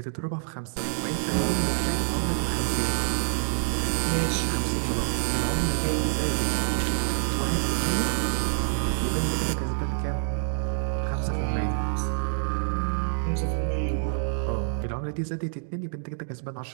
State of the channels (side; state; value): left; silent; digital silence